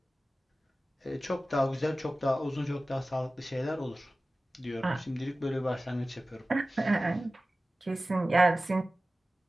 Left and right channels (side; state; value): both; normal; correlation 0.96